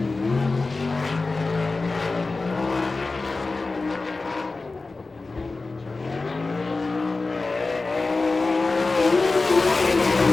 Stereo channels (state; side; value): quieter; right; 3.6 dB